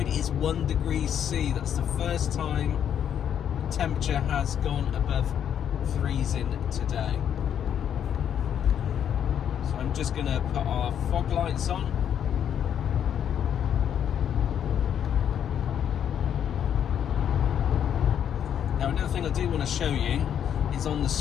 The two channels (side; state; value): right; quieter; 9.1 dB